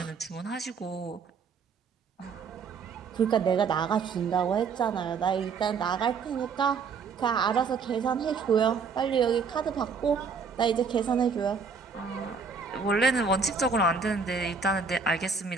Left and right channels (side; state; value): left; quieter; 5.4 dB